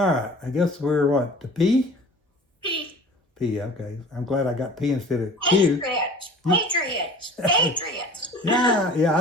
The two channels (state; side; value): normal; both; correlation 0.43